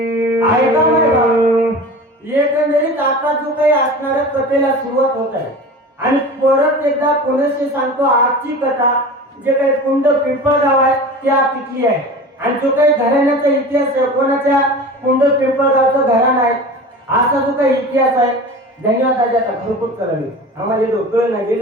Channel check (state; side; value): normal; both; correlation 0.34